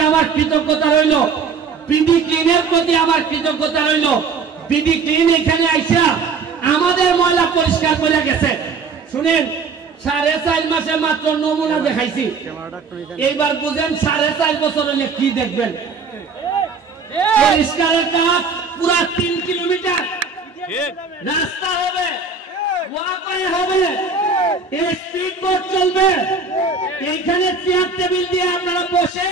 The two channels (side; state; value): left; quieter; 5.0 dB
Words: আমার কৃতজ্ঞতা রইল। বিডি ক্লিনের প্রতি আমার কৃতজ্ঞতা রইল। বিডি ক্লিন এখানে আইসা আমাদের ময়লা পরিষ্কার করে গেছে। শুনেন, 4.5 মাসে মাত্র নমুনা দেখাইছি, এইবার বুঝেন 4.5 বছর হলে কি দেখবেন। পরিষ্কারের কাজ পুরা 3 কিলোমিটার রাস্তা হবে, ওয়াকওয়ে হবে, স্পিড বোট চলবে। এইখানে চেয়ার টেবিল দিয়ে আপনারা বসে